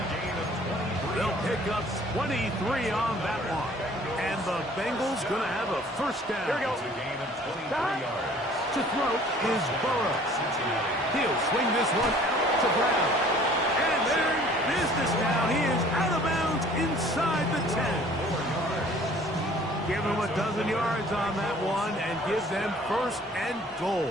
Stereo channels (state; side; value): normal; both; correlation 0.53